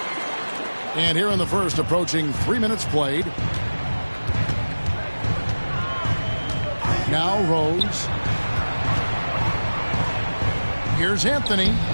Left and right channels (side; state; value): both; inverted; correlation -1.00